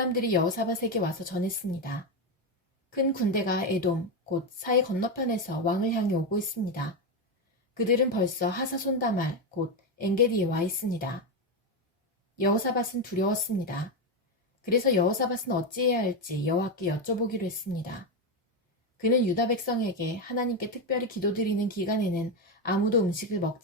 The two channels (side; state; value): both; normal; correlation 0.10